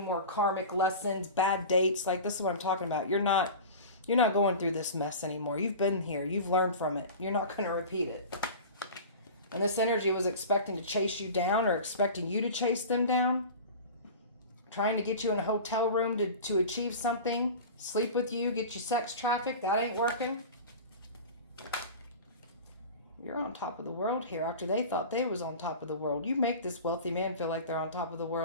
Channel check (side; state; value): both; inverted; correlation -0.34